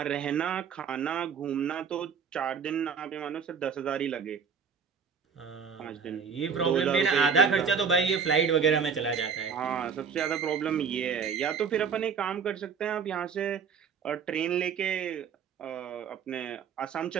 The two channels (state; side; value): quieter; left; 6.4 dB